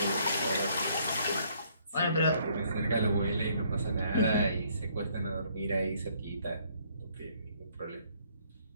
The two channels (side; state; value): both; inverted; correlation -0.65